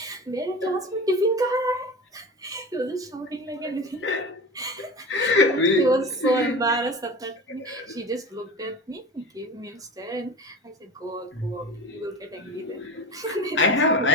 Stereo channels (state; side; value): normal; both; correlation 0.32